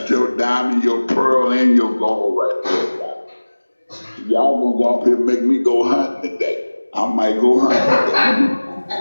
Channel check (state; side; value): inverted; both; correlation -1.00